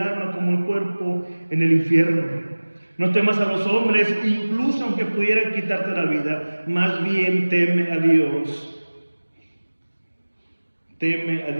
como el cuerpo en el infierno. No temas a los hombres, incluso aunque pudieran quitarte la vida. Más bien teme a Dios. Teme a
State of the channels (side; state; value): both; inverted; correlation -1.00